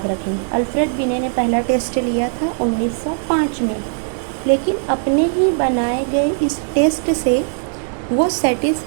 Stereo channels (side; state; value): left; silent; 62 dB below the other